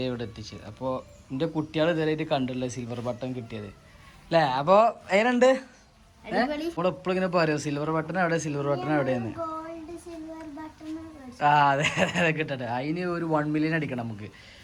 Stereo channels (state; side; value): identical; both; correlation 1.00